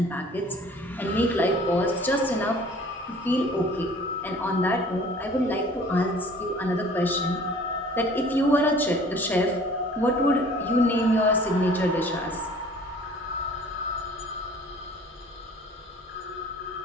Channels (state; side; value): normal; both; correlation 0.50